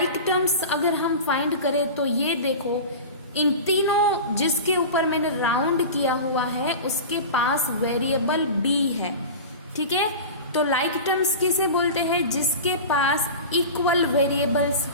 टर्म्स अगर हम फाइंड करें तो ये देखो, इन तीनों जिसके ऊपर मैंने राउंड किया हुआ है उसके पास वेरिएबल b है, ठीक है। तो लाइक टर्म्स किसे बोलते हैं? जिसके पास इक्वल वेरिएबल्स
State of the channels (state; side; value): inverted; both; correlation -0.30